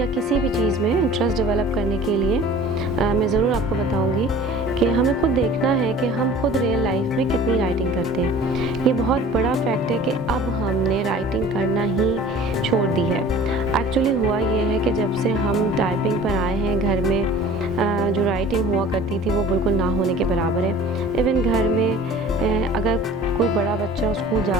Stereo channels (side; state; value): both; normal; correlation 0.45